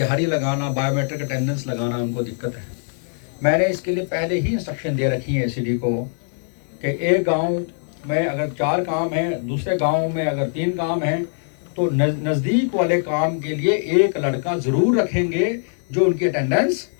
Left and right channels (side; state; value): right; silent; digital silence